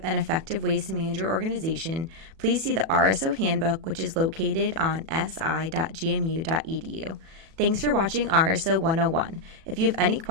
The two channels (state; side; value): late; left; 37 ms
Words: and effective ways to manage your organization, please see the RSO Handbook, which is located on si.gmu.edu. Thanks for watching RSO 101. If you have any